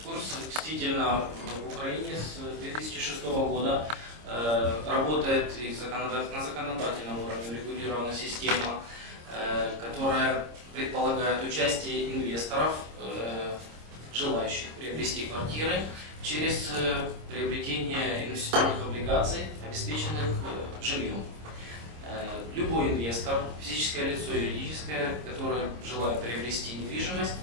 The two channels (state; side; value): late; left; 26 ms